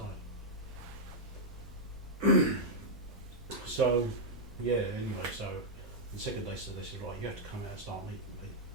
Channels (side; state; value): both; normal; correlation -0.05